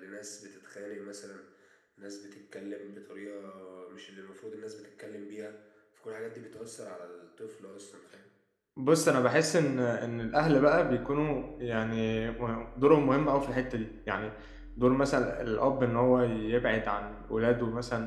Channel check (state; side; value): identical; both; correlation 1.00